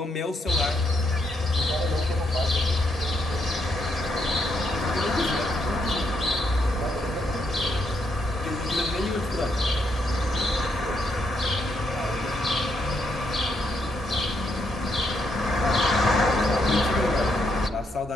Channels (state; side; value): normal; both; correlation 0.77